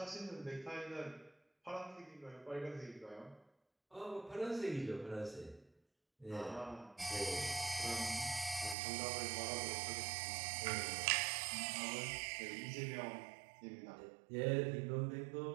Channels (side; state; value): left; drops out; at 8.8 s